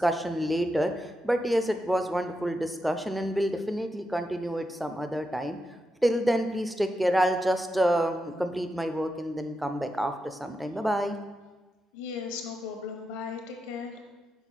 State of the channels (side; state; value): both; normal; correlation 0.87